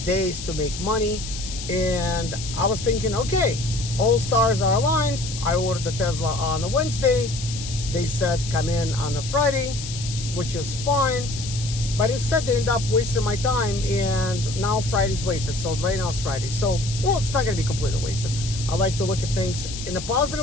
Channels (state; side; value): noise; left; hiss, 9 dB below the sound